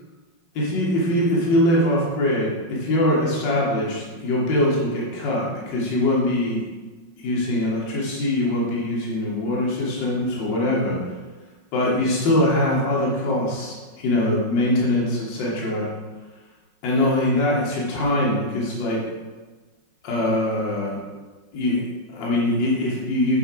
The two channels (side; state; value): right; late; 5.5 ms